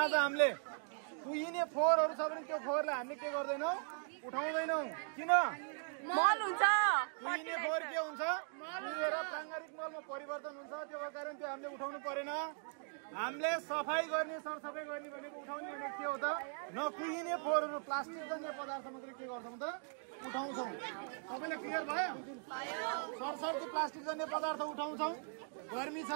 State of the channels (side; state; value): left; silent; 51 dB below the other